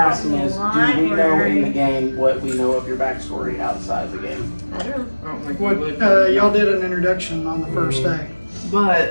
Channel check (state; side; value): inverted; both; correlation -1.00